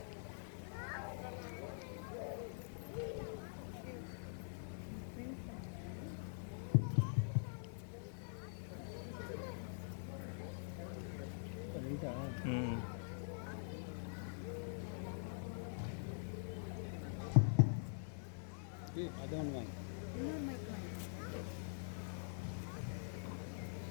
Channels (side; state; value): right; silent; digital silence